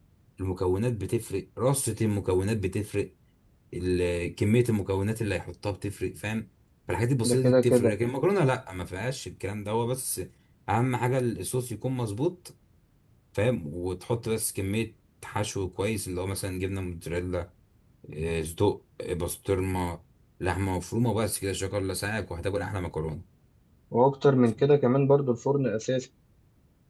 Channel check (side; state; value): both; identical; correlation 1.00